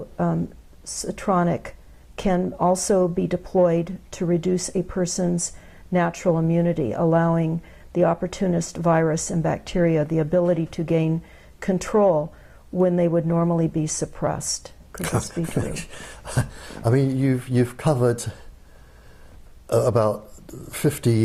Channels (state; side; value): identical; both; correlation 1.00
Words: can also be deployed to reduce a person's natural immunity, allowing the opportunist virus and bacteria the ability to gain control when they would normally be suppressed. Could this be true? I mean, you've covered about 50